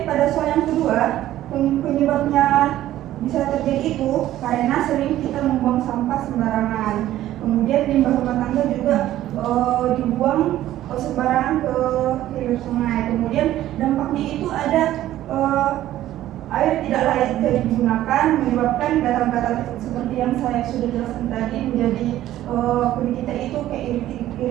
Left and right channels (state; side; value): quieter; left; 13.7 dB